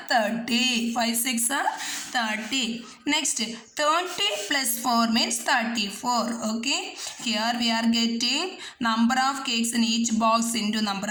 30. 5 6 are 30. Next, 30 plus 4 means 34. Okay, here we are getting number of cakes in each box into number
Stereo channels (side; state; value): both; identical; correlation 1.00